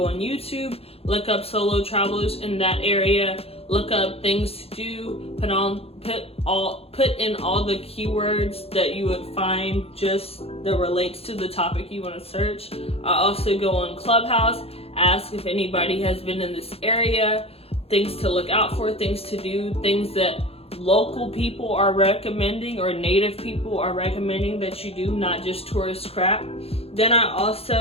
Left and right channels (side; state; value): right; late; 0.29 ms